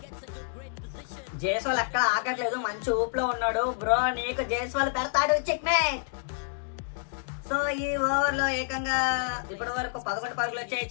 జైస్వాల్ ఎక్కడ ఆగట్లేదు, మంచి ఊపులో ఉన్నాడు బ్రో. నీకు జైస్వాల్ పెడతాడు చెక్మేట్. సో ఈ ఓవర్ లో ఏకంగా ఇప్పటి వరకు 11 పరుగులు వచ్చాయి.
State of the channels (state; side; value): silent; right; digital silence